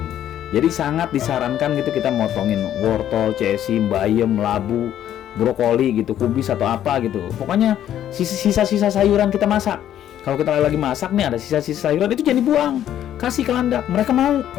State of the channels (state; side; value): quieter; right; 11.1 dB